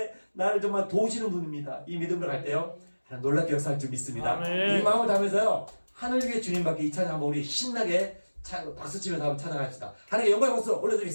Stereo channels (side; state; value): both; inverted; correlation -1.00